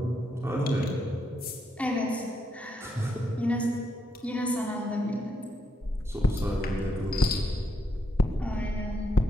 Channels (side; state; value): both; normal; correlation 0.79